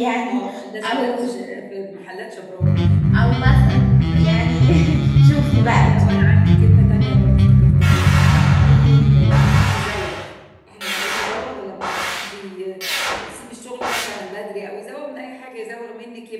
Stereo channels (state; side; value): identical; both; correlation 1.00